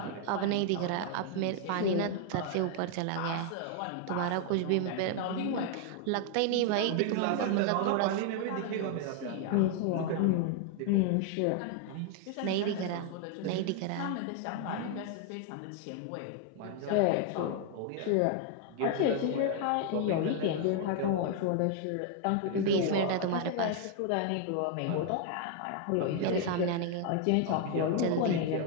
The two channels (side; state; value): both; different; correlation 0.00